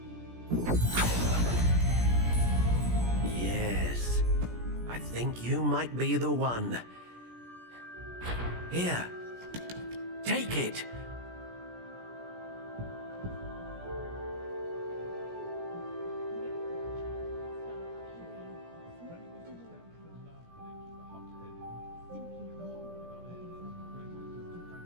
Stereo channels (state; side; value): late; left; 17 ms